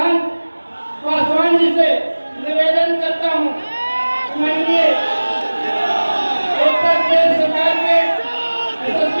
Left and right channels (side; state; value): both; inverted; correlation -1.00